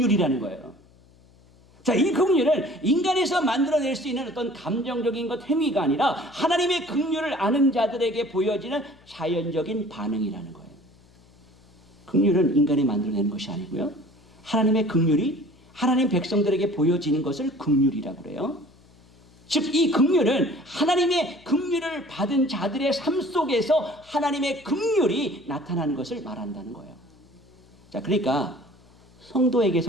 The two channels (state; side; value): noise; left; hum, 28 dB below the sound